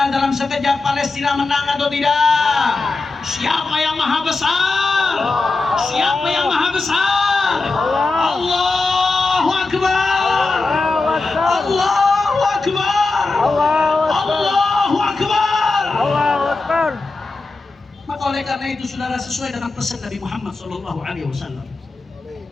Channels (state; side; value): quieter; right; 3.7 dB